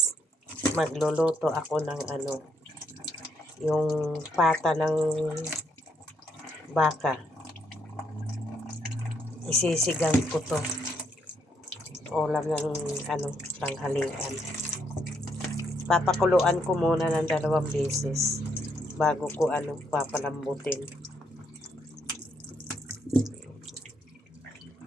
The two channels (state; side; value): normal; both; correlation 0.74